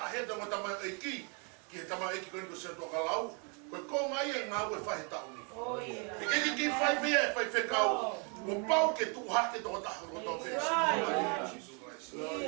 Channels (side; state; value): left; quieter; 36.2 dB